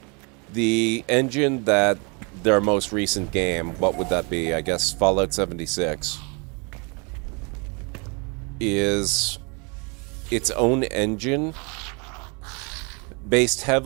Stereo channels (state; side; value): quieter; left; 32.3 dB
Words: The engine that their most recent game, what would that be? I guess Fallout 76, is its own engine based